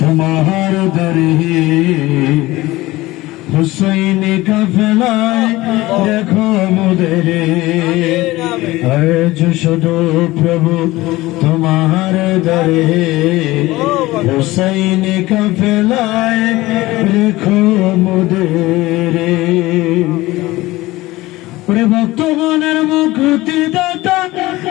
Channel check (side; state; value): right; quieter; 18.8 dB